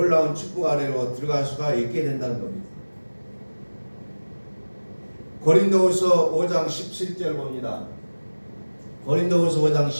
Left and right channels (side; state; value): both; inverted; correlation -1.00